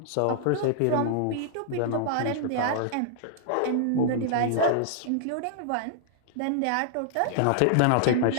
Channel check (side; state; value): both; different; correlation -0.01